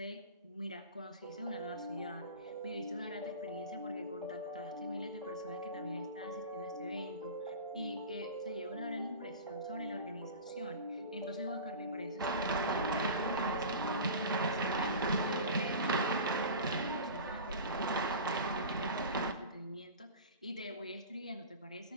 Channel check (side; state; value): both; inverted; correlation -0.34